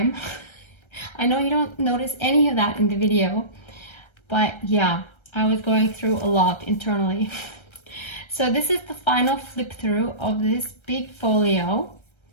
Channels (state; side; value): late; right; 1.3 ms